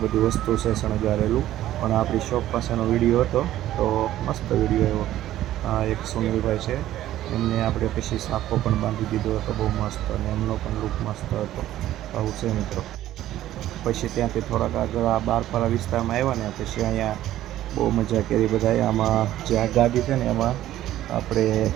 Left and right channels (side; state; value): left; quieter; 13.5 dB